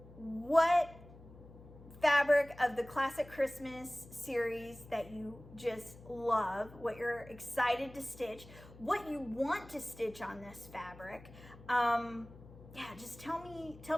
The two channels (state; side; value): noise; left; hum, 19 dB below the sound